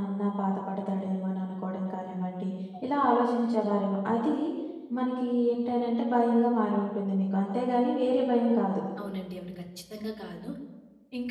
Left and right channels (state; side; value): identical; both; correlation 1.00